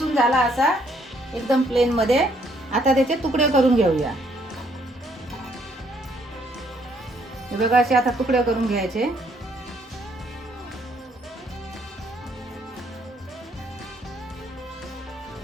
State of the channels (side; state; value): both; normal; correlation 0.68